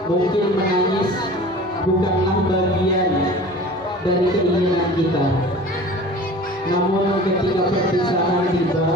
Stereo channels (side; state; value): both; normal; correlation 0.41